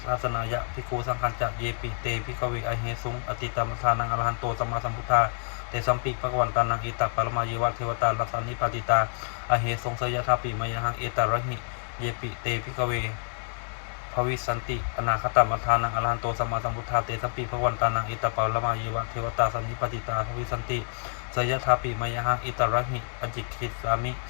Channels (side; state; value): right; silent; 59 dB below the other